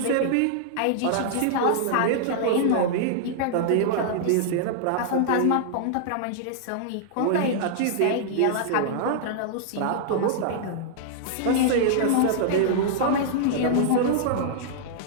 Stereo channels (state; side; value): different; both; correlation -0.01